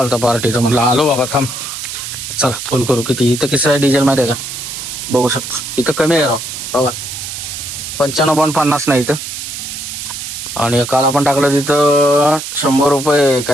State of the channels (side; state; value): right; noise; hiss, 7 dB below the sound